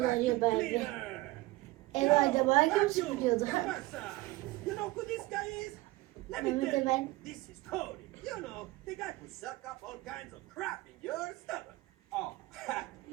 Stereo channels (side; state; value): left; quieter; 19.9 dB